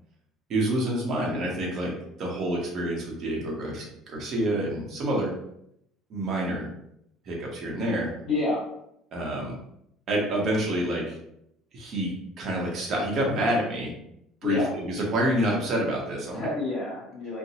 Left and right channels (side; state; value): both; normal; correlation 0.51